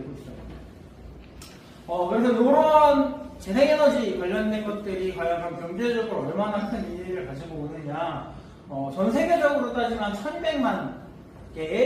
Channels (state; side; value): identical; both; correlation 1.00